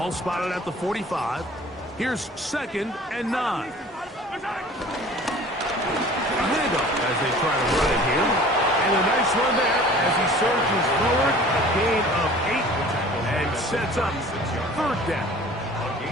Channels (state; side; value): normal; both; correlation 0.46